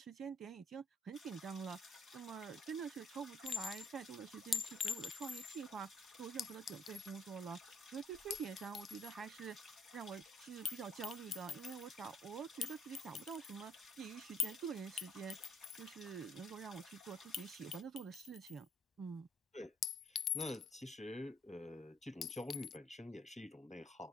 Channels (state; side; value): normal; both; correlation 0.68